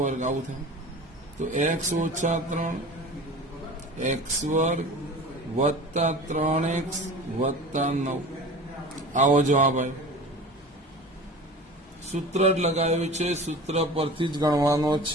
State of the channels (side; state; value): both; normal; correlation 0.37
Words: આવું થાય. તો x ઓછા 3 x વર્ગ વત્તા 3x વત્તા 9. આવો જવાબ આવ્યો. સૂત્ર જ લગાવ્યું છે, સૂત્ર પરથી જ ગણવાનો